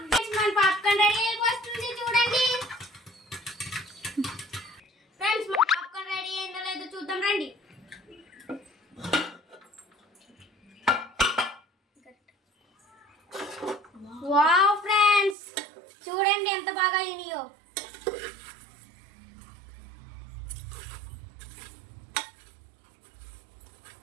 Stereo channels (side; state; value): left; drops out; at 15.4 s